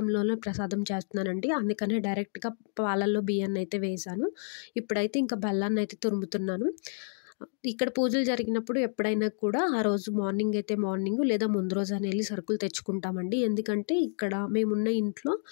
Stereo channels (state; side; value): silent; right; digital silence